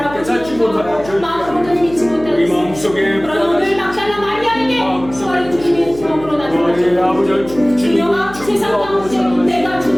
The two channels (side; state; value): left; noise; hum, 16 dB below the sound